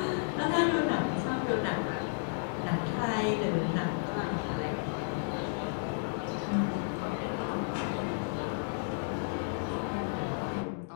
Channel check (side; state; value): right; silent; digital silence